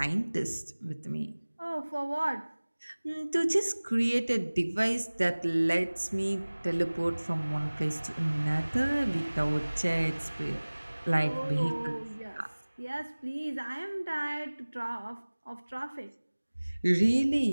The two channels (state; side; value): inverted; both; correlation -1.00